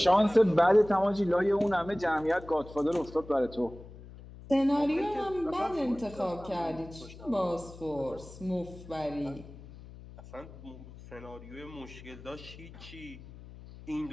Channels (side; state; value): left; noise; hum, 17 dB below the sound